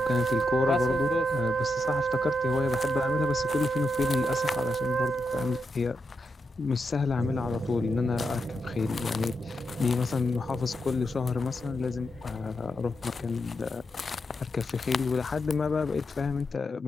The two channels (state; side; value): normal; both; correlation 0.85